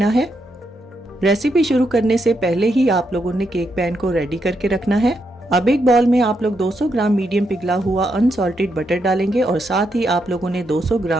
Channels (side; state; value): both; normal; correlation 0.81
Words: है। रेसिपी शुरू करने से पहले ही आप लोगों ने केक पैन को रेडी करके रखना है। अब एक बाउल में आप लोग 200 ग्राम मीडियम पिघला हुआ अनसॉल्टेड बटर डालेंगे और साथ ही आप लोगों ने 200